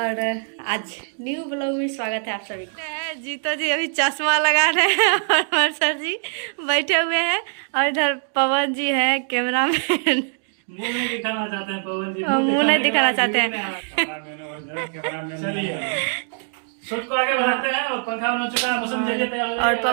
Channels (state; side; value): silent; left; 64 dB below the other